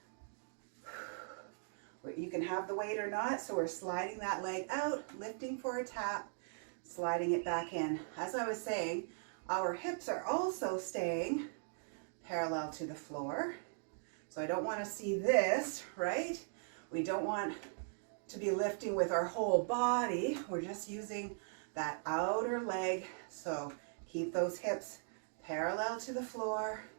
you can have the weight or not. So we're sliding that leg out, lifting for a tap, sliding it back in. As I was saying, our hips are also staying parallel to the floor. So I don't want to see this, right? We don't want to be lifting with our whole body. We're just using that outer leg. So keep those hips parallel to the floor.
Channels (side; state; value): left; silent; digital silence